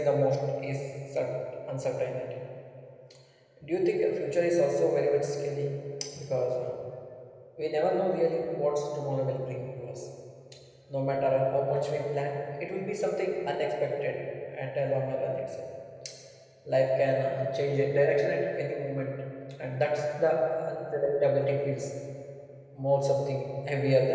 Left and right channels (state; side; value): identical; both; correlation 1.00